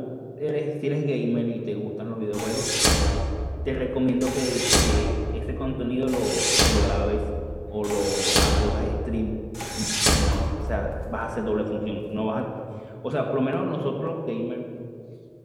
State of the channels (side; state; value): both; identical; correlation 1.00